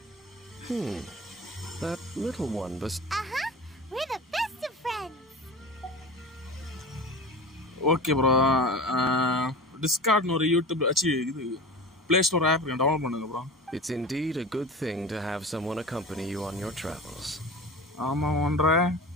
That little one Uh-huh. We're the best of friends. Okay bro. டிஸ்கார்ட்னு ஒரு யூடியூப் இது ப்ளே ஸ்டோர் ஆப் டவுன்லோட் பண்ணுங்க bro. It's indeed a good thing to have someone accompany you on your travels. ஆமாம் ஒன்ற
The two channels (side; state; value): both; normal; correlation 0.32